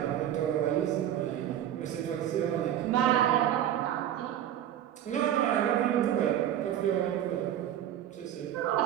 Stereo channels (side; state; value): left; quieter; 11.1 dB